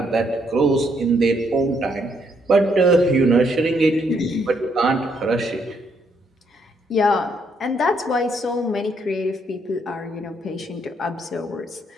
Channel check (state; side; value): normal; both; correlation 0.72